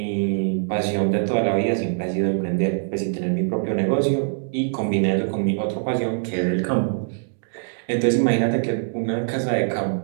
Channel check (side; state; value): left; silent; digital silence